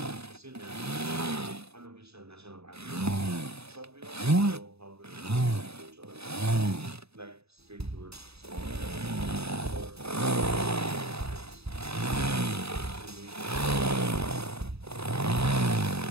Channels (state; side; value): late; left; 0.79 ms